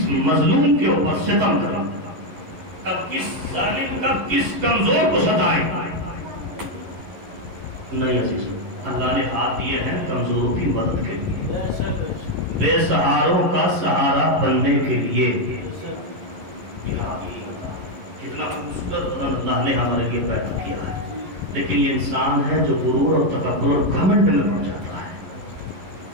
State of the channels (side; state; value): left; late; 11 ms